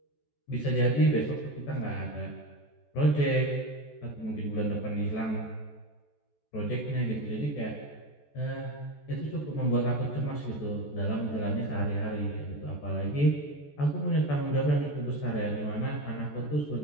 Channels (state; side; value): late; right; 14 ms